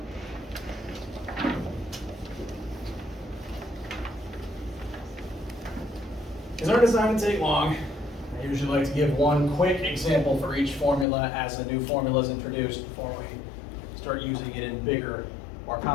These aren't designed to take long. I usually like to give one quick example for each formula as a new formula is introduced before we start using it in bigger, more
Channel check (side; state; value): right; drops out; at 11.1 s